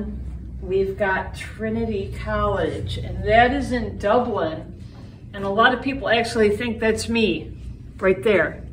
we've got Trinity College, and that is in Dublin. And a lot of people actually think that's me right there.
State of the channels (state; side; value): identical; both; correlation 1.00